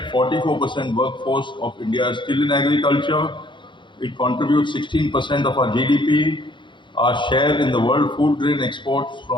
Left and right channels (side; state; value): right; late; 0.23 ms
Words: 44% workforce of India is still in agriculture. It contributes 16% of our GDP. Our share in the world food grain exports